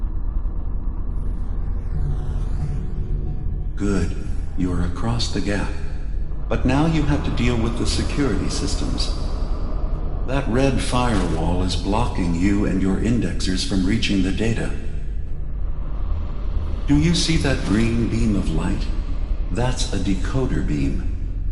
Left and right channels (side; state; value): both; identical; correlation 1.00